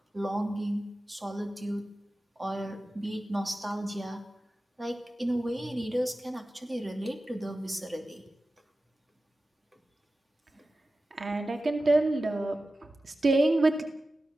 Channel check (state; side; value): normal; both; correlation 0.94